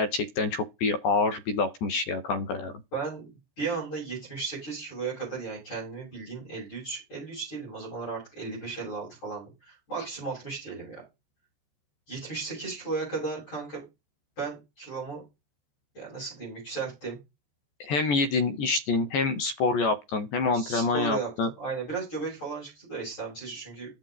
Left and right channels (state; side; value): late; right; 14 ms